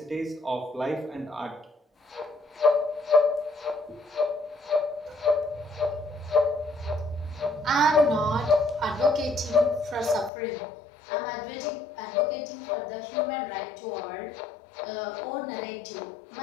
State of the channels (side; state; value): right; drops out; at 10.3 s